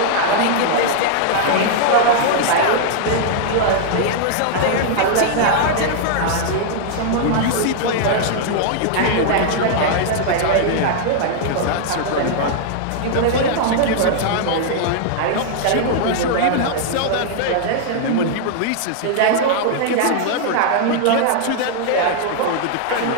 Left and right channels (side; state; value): both; different; correlation -0.01